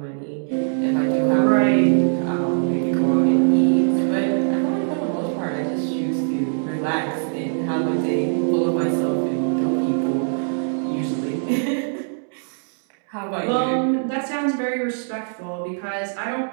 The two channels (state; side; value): silent; left; digital silence